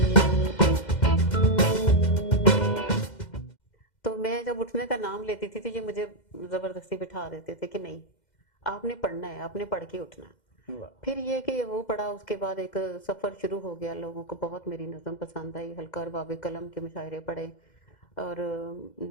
میں جب اٹھنے کا نام لیتی تھی تو یہ مجھے زبردستی بٹھا دیتے تھے کہ نہیں آپ نے پڑھنا ہے، آپ نے پڑھ کے اٹھنا ہے۔ پھر یہ کہ وہ پڑھا، اس کے بعد ایک سفر شروع ہو گیا، لوگوں کو بہت میری نظم پسند آئی، حلقہ اور باب قلم کے مشاعرے پڑھے، اور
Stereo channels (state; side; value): late; right; 2.1 ms